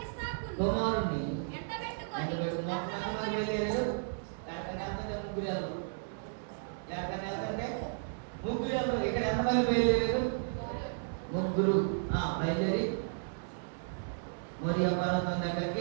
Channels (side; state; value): left; silent; digital silence